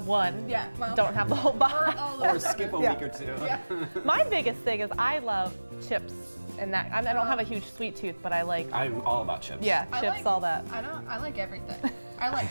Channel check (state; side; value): inverted; both; correlation -1.00